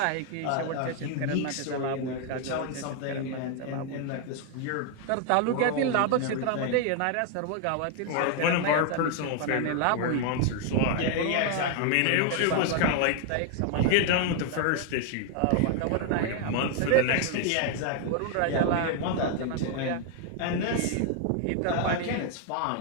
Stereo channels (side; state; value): both; different; correlation 0.00